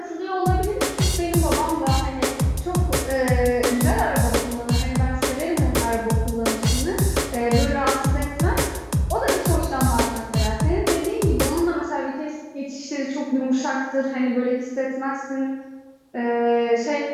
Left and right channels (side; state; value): both; identical; correlation 1.00